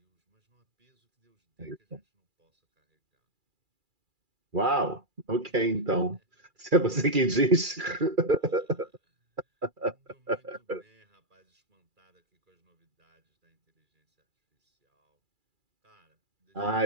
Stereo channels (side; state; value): left; late; 2.4 ms